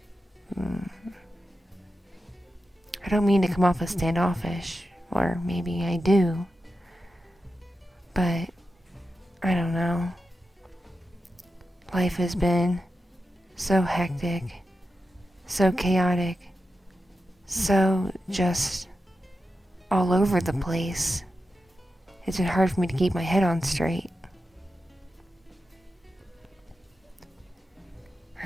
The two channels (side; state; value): both; normal; correlation 0.90